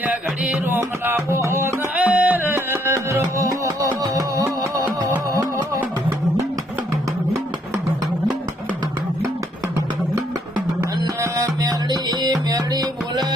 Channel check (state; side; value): normal; both; correlation 0.69